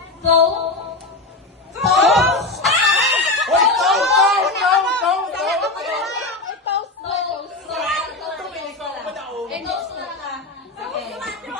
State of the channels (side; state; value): right; quieter; 3.0 dB